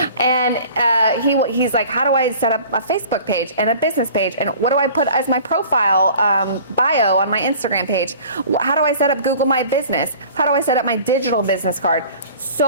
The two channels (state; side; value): inverted; both; correlation -0.45